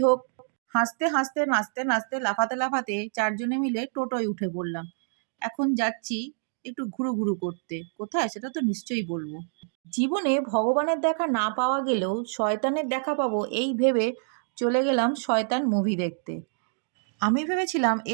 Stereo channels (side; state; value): left; silent; digital silence